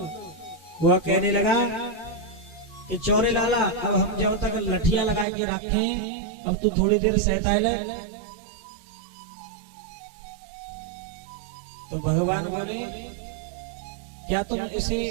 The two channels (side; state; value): left; drops out; at 5.2 s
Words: वह कहने लगा कि चौरे लाला, अब हम जब तक लठिया लगा के रखे, अब तू थोड़ी देर सहता ले। तो भगवान बोले, क्या तुम इसे